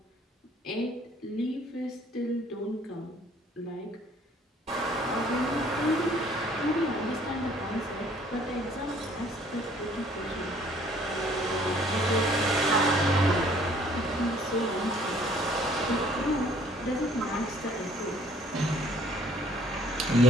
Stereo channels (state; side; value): normal; both; correlation 0.58